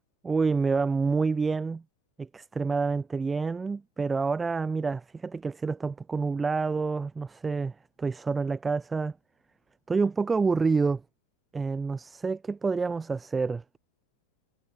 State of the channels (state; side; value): quieter; left; 4.1 dB